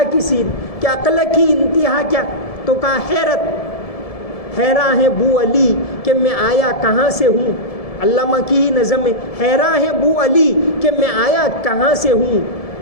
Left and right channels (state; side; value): late; right; 1.7 ms